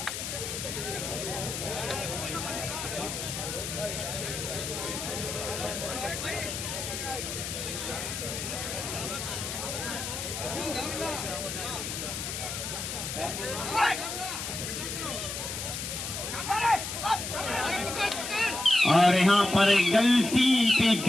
और यहाँ पर गलती पे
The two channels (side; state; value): left; noise; hiss, 5 dB below the sound